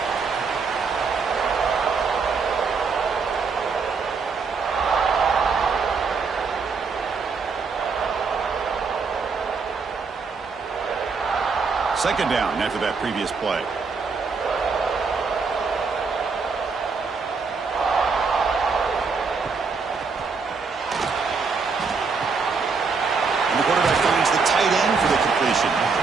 Second down after that previous play. And the quarterback finds the tight end for the completion.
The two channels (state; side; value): quieter; left; 4.9 dB